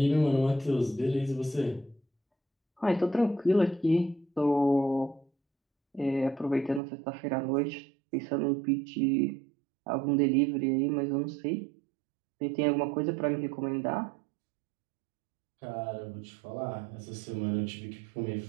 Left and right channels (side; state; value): left; drops out; at 6.8 s